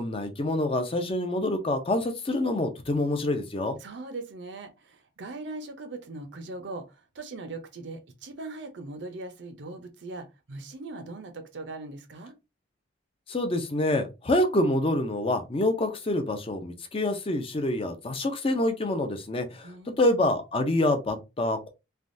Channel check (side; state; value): both; normal; correlation 0.43